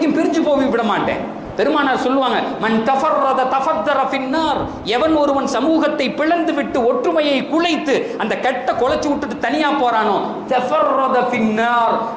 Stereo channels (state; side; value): identical; both; correlation 1.00